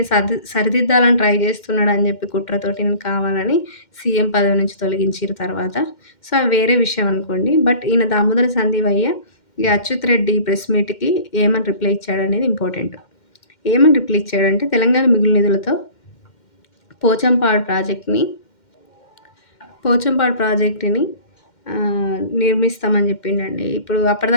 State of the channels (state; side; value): late; right; 2.1 ms